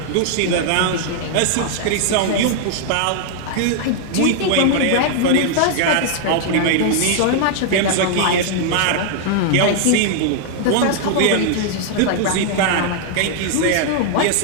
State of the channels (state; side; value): different; both; correlation 0.00